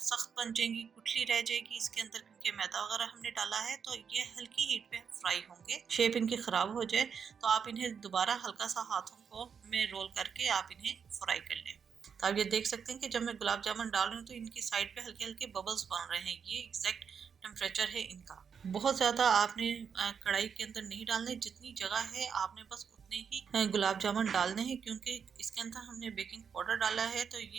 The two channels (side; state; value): left; quieter; 6.8 dB